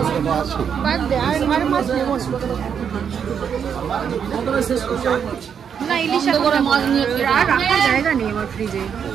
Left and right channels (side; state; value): left; quieter; 7.5 dB